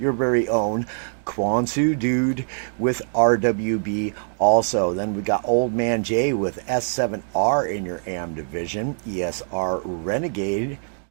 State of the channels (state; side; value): silent; left; digital silence